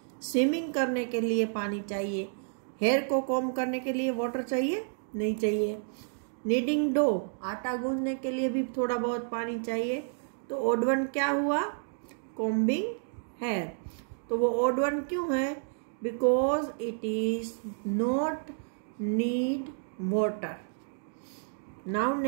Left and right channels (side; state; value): left; silent; digital silence